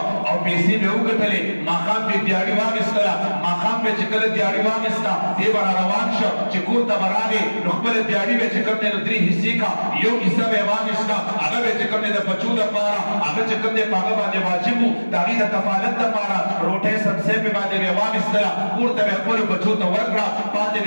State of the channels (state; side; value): inverted; both; correlation -1.00